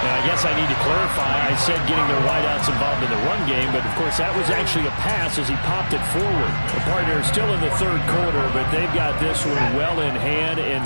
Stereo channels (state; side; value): inverted; both; correlation -1.00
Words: I guess I need to clarify. I said getting their wideouts involved in the run game, but of course that was actually a pass as he popped it forward. The partner is still in the 3rd quarter, but they've got this one well in hand